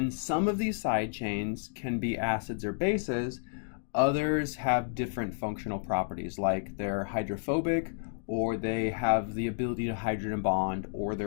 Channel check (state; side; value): silent; right; digital silence